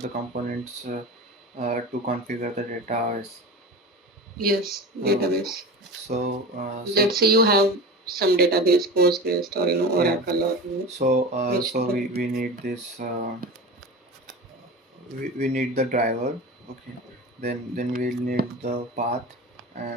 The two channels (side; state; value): both; normal; correlation 0.30